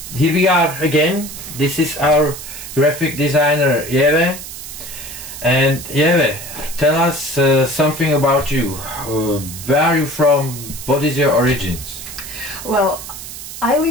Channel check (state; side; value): noise; right; hiss, 11 dB below the sound